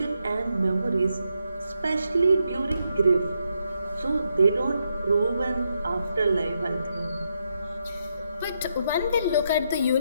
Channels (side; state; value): both; inverted; correlation -0.81